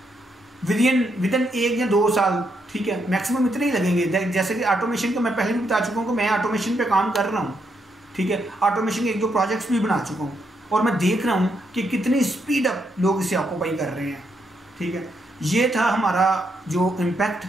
विदिन 1 या 2 साल, ठीक है, मैक्सिमम इतने ही लगेंगे। जैसे कि ऑटोमेशन का मैं पहले भी बता चुका हूँ कि मैं ऑटोमेशन पे काम कर रहा हूँ, ठीक है, ऑटोमेशन के 1-2 प्रोजेक्ट्स भी बना चुका हूँ, और मैं देख रहा हूँ कि कितनी स्पीड अप लोग इसे ऑक्यूपाई कर रहे हैं, ठीक है। ये था हमारा जो इम्पैक्ट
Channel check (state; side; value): normal; both; correlation 0.78